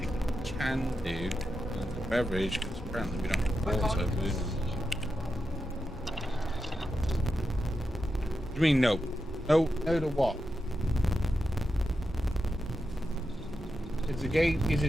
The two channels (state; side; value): normal; both; correlation 0.88